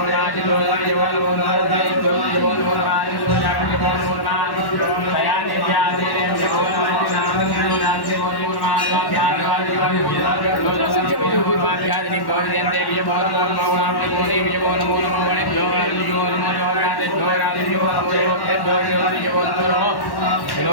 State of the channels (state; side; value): late; right; 1.1 ms